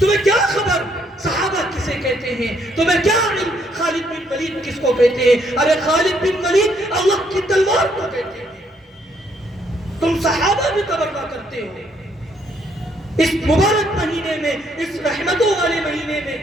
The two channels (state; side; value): normal; both; correlation 0.70